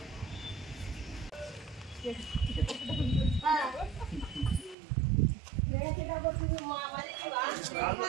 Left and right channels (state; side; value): drops out; left; at 4.8 s